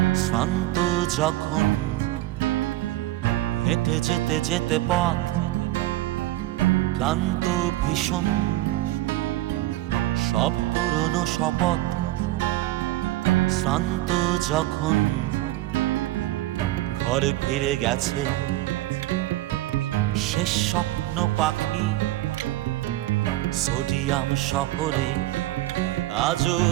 শ্রান্ত যখন। হেঁটে যেতে যেতে পথ ক্লান্ত ভীষণ, সব পুরনো শপথ শ্রান্ত যখন। ঘরে ফিরে গেছে শেষ স্বপ্ন পাখি সোডিয়াম শহরে, আজও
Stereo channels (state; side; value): quieter; left; 16.5 dB